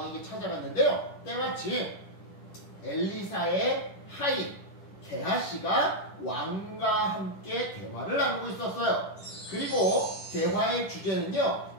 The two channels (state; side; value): late; right; 10 ms